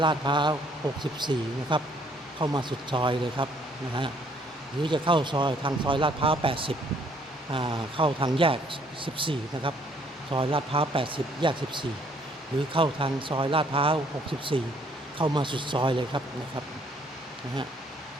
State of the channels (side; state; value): both; normal; correlation 0.64